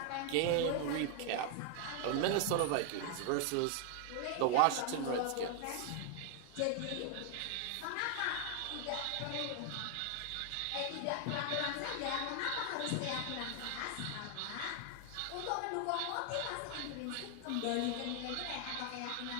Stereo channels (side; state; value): both; different; correlation 0.00